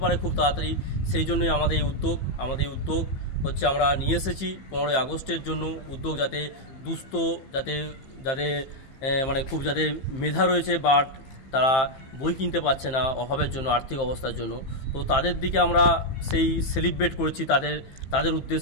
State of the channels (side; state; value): right; late; 15 ms